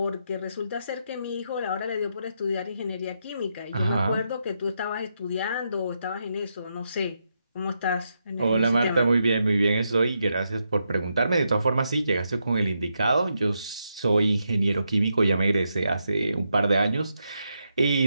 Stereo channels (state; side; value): inverted; both; correlation -0.82